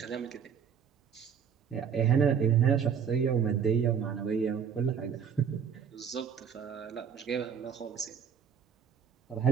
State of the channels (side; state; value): left; quieter; 7.4 dB